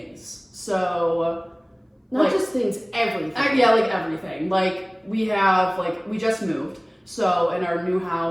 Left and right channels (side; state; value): both; identical; correlation 1.00